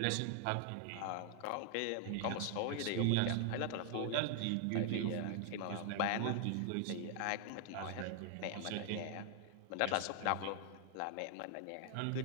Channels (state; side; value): different; both; correlation 0.00